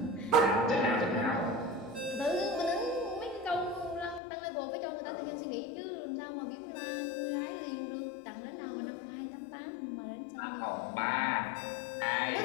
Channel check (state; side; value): drops out; right; at 4.2 s